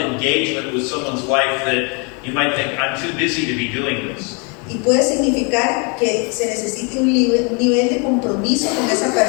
with someone's life that you might think, I'm too busy to be doing this? Y puede significar que se necesite un nivel de compromiso con esa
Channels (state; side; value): quieter; right; 33.9 dB